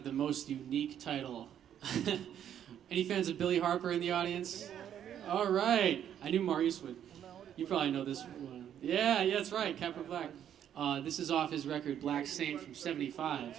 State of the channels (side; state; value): left; quieter; 9.8 dB